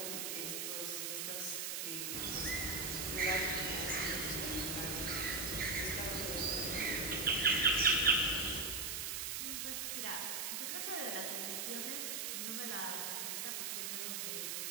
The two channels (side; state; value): right; noise; hiss, 1 dB below the sound